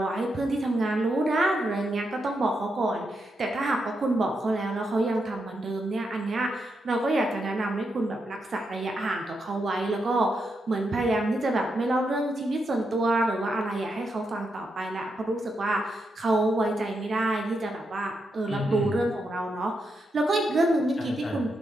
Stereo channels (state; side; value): normal; both; correlation 0.83